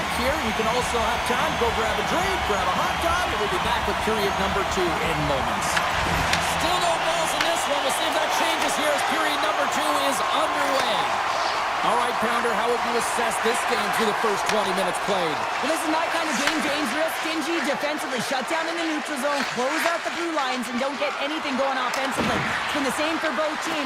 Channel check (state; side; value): identical; both; correlation 1.00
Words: here. You can also have time to go grab a drink, grab a hot dog, and we'll be back with period number 2 in moments. Still no balls in this one. We'll see if that changes here as period number 2 is underway. All right, Pounder, how would you assess this game through the first 20 minutes played? Well, this is my kind of game, James. Real stingy defensively. Shut down in the neutral zone, close out the blue lines, and don't get anything going offensively. It's been the same for both